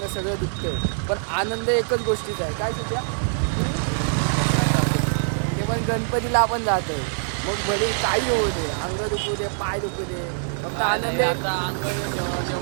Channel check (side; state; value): left; silent; digital silence